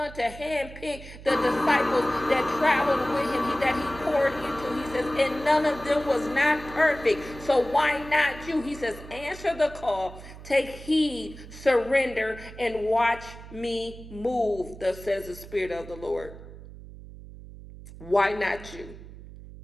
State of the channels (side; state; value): right; noise; hum, 15 dB below the sound